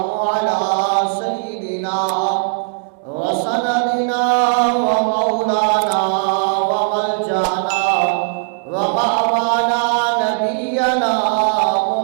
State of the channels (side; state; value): left; silent; digital silence